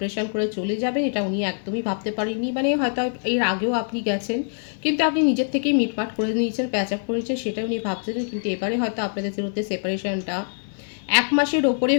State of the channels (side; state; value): right; silent; digital silence